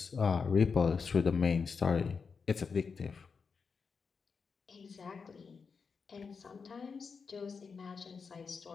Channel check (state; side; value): quieter; right; 5.4 dB